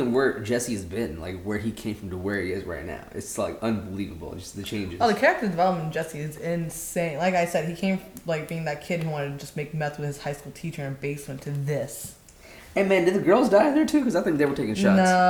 where Jesse's been, like where he came from to where he is right now, it's like unbelievable. Just the changes. Oh, the character development in Jesse is insane. Like I said, he came like being that kid who wanted to just make meth with his high school teacher in a basement to this. Hey man, did the girls die there too? Because I think they were taking shots.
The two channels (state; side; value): identical; both; correlation 1.00